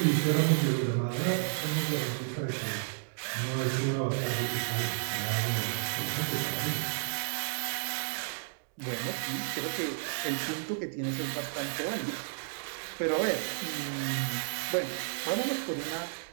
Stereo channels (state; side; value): silent; left; digital silence